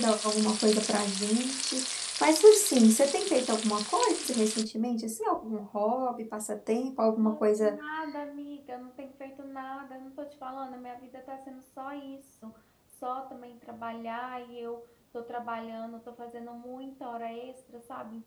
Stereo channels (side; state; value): both; identical; correlation 1.00